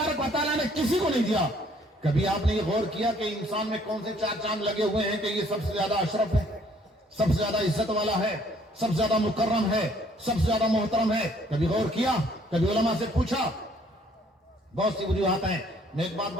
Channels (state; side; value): normal; both; correlation 0.62